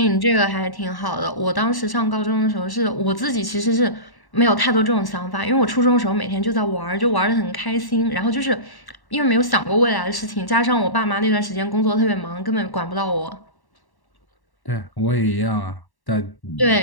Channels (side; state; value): right; late; 1.1 ms